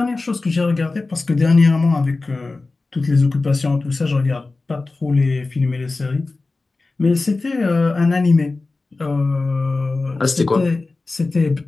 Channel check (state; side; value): quieter; right; 3.5 dB